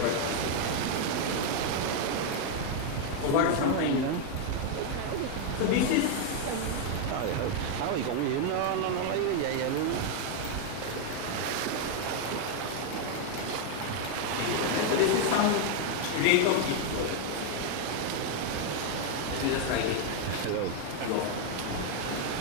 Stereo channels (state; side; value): different; both; correlation 0.00